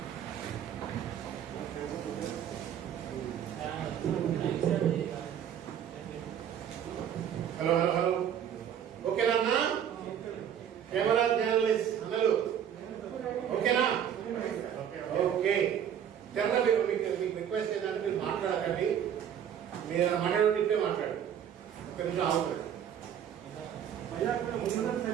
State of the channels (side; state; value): left; quieter; 9.2 dB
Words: hello hello hello ఓకేనా అన్న camera journalist అన్నలు ఓకేనా ఓకే తెరణ మీకు రిక్వెస్ట్ ఏంటంటే మీరు మాట్లాడకండి మీరు మాట్లాడే ఇప్పుడే మాట్లాడు ఒక నిమిషం ఆగుతుంది